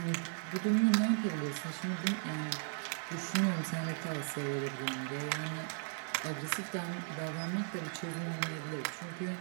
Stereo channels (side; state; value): left; silent; 53 dB below the other